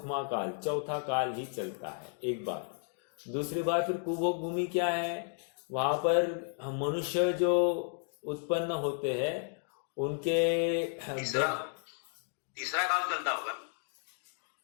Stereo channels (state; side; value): silent; right; 56 dB below the other